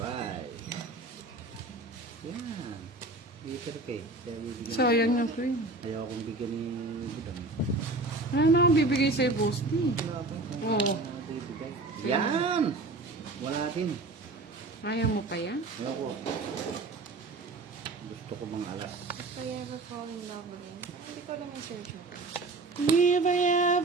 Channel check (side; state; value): left; quieter; 3.2 dB